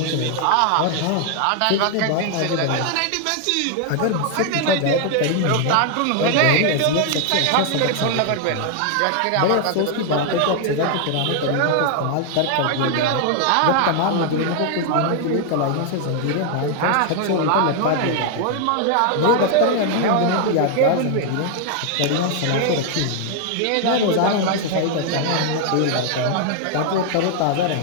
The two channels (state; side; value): different; both; correlation 0.00